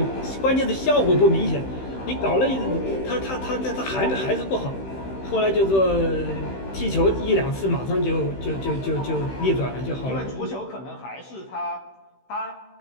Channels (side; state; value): right; late; 16 ms